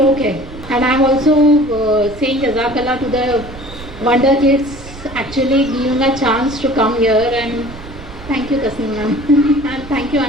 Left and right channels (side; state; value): right; noise; rumble, 15 dB below the sound